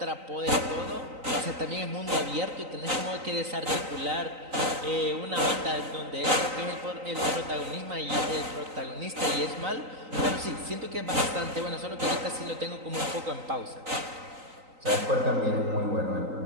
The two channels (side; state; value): left; late; 3.9 ms